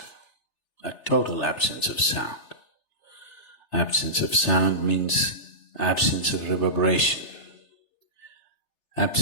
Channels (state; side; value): late; right; 3.3 ms